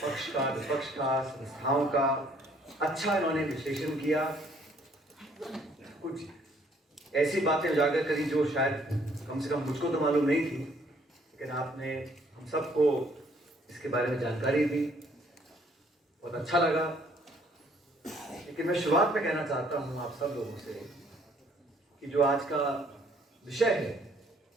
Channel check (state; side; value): normal; both; correlation 0.63